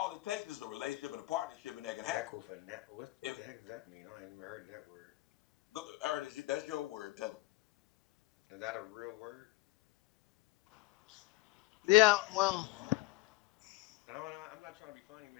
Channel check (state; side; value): quieter; right; 20.3 dB